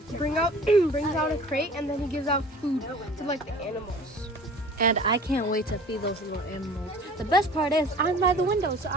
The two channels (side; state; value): both; normal; correlation 0.45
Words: out a crate, and then he gives out food to like the animals. And I can't wait to feed those little animals. The best part is I'm by the window, so